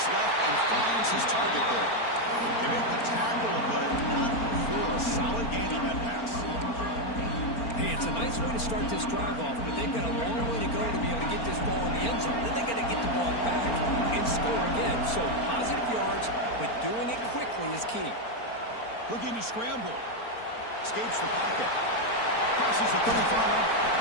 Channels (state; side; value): late; right; 4.4 ms